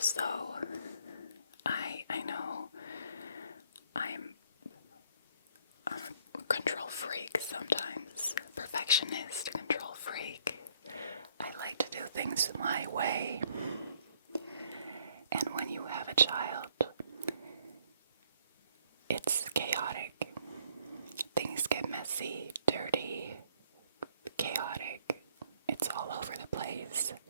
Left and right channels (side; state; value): both; inverted; correlation -0.65